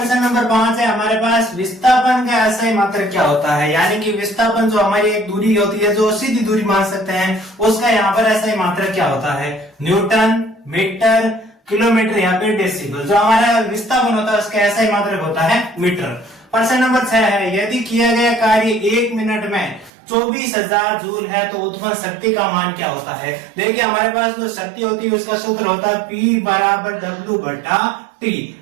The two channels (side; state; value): left; drops out; at 19.9 s